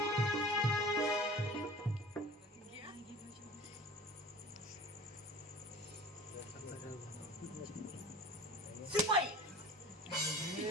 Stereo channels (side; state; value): both; normal; correlation 0.41